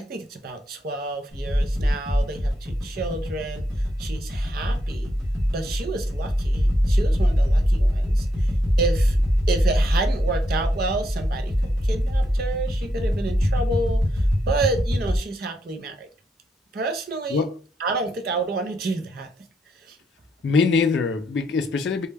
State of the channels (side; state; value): both; normal; correlation 0.79